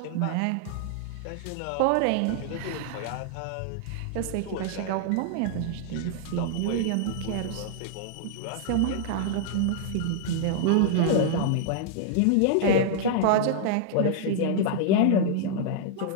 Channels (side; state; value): both; different; correlation -0.01